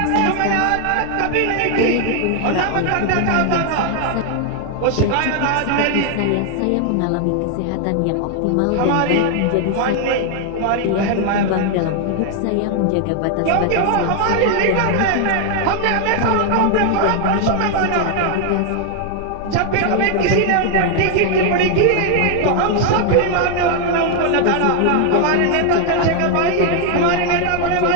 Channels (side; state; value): both; different; correlation 0.00